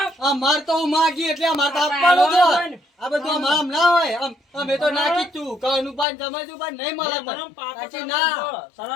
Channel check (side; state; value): right; drops out; at 6.1 s